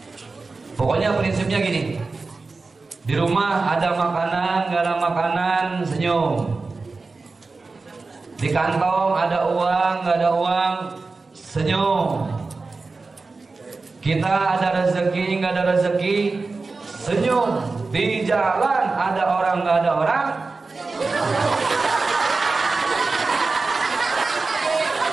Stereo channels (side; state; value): left; quieter; 3.9 dB